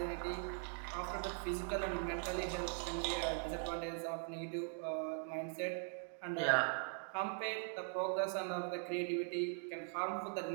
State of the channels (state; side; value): silent; left; 50 dB below the other